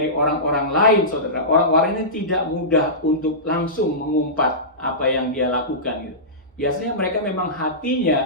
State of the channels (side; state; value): both; normal; correlation -0.18